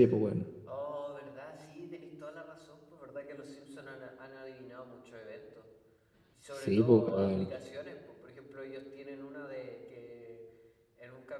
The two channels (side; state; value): both; identical; correlation 1.00